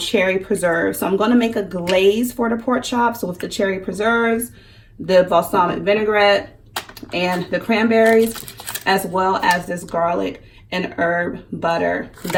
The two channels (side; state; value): both; identical; correlation 1.00